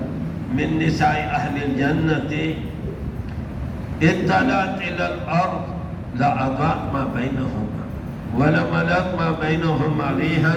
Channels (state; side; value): identical; both; correlation 1.00